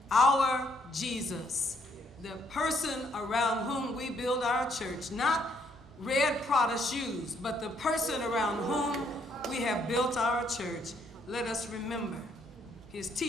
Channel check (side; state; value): both; normal; correlation 0.70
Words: our Jesus, the person around whom we build our church, not red Prada shoes, but the person around whom we have built our church. Let us remember, his